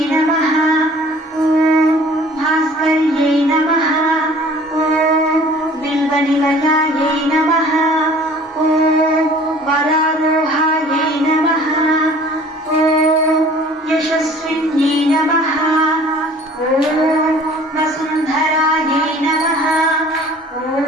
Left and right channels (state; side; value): normal; both; correlation 0.50